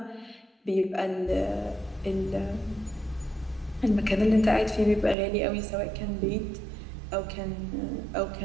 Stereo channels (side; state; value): left; drops out; at 5.2 s